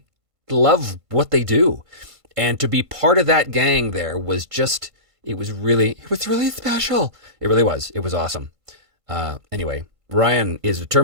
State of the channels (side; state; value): left; late; 1.5 ms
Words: love what they do. And to be part of that gang there was just, it was really special. It really was. It was awesome. Anyway, Ryan is